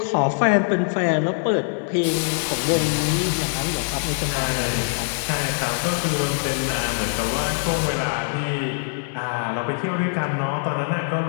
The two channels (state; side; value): silent; right; digital silence